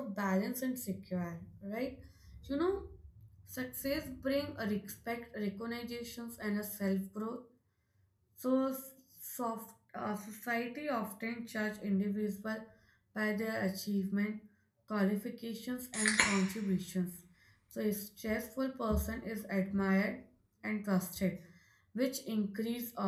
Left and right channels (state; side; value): identical; both; correlation 1.00